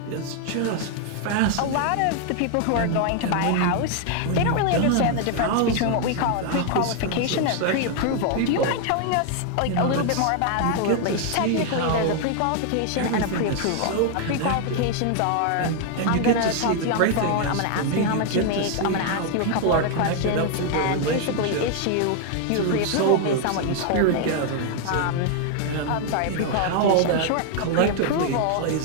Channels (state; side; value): different; both; correlation 0.00